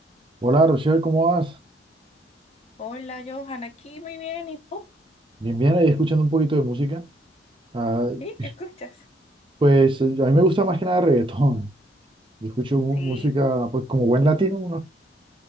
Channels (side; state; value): both; normal; correlation 0.71